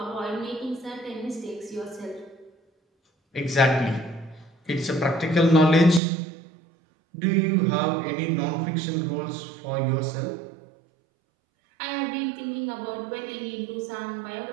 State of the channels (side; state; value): left; drops out; at 6.0 s